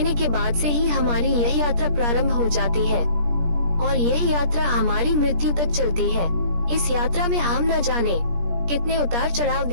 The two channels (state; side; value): late; left; 17 ms